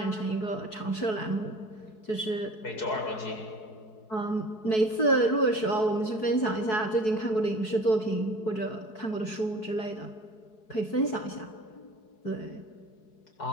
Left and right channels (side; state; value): right; late; 4.6 ms